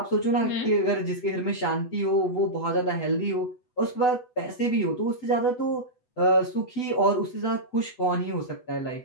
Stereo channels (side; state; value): right; late; 8.1 ms